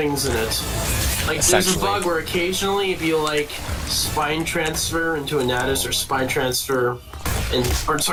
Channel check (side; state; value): both; identical; correlation 1.00